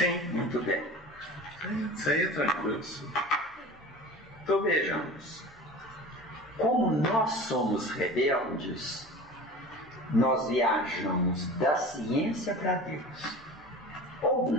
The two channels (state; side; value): noise; right; hum, 29 dB below the sound